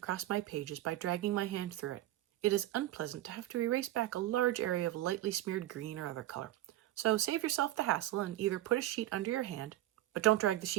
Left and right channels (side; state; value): left; quieter; 14.7 dB